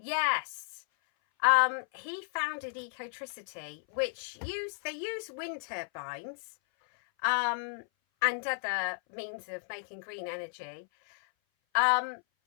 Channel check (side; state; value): right; silent; 56 dB below the other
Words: He founded Ecotricity, which they use wind turbines and other means of making green energy. But